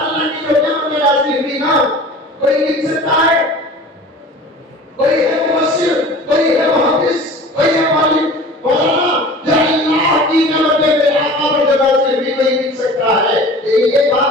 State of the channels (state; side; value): normal; both; correlation 0.41